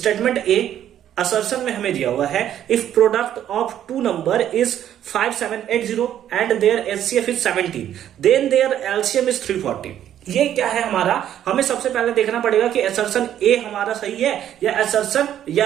ए असर्शन में हमें दिया हुआ है if product of two number is 5780 and their HCF is 17 then their LCM is 340। ये क्या है हमारा, हमें सबसे पहले देखना पड़ेगा कि असर्शन ए हमारा सही है या असर्शन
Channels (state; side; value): quieter; left; 10.8 dB